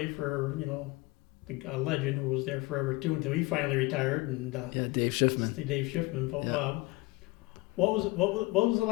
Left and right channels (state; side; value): quieter; right; 22.1 dB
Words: for a legend who was there forever too until he finally retired. And Yeah, Dave Schiffman. Dave Schiffman. But, Yeah. what was it